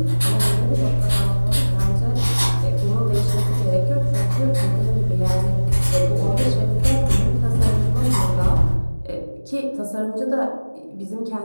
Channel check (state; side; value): inverted; both; correlation -1.00